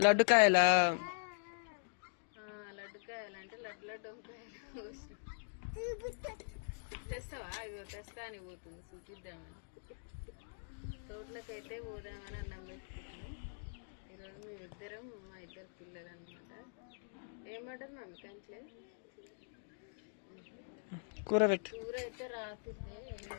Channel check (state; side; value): silent; right; digital silence